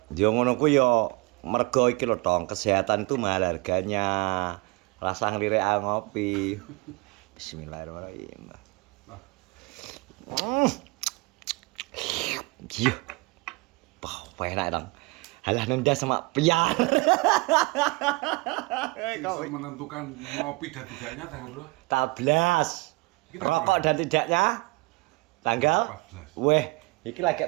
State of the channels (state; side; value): quieter; left; 26.6 dB